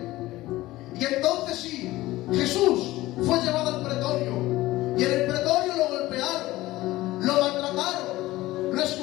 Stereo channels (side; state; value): right; quieter; 17.5 dB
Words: Y entonces sí, Jesús fue llevado al pretorio, y en el pretorio lo golpearon, lo maltrataron, lo